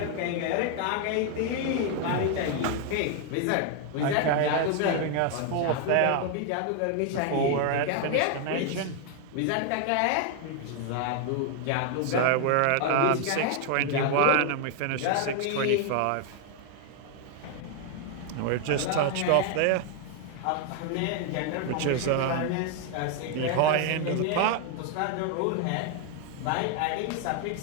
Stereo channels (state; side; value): different; both; correlation 0.00